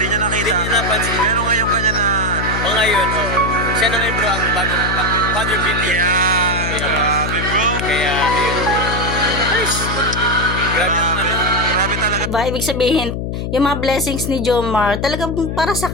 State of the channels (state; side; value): noise; left; hum, 3 dB below the sound